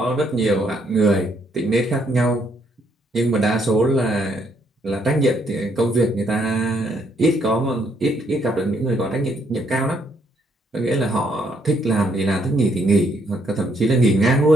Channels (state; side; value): normal; both; correlation 0.71